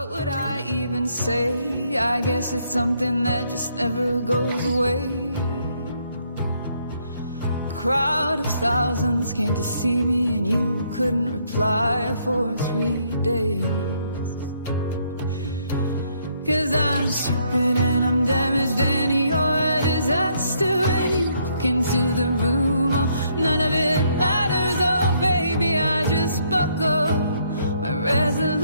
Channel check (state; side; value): inverted; both; correlation -0.70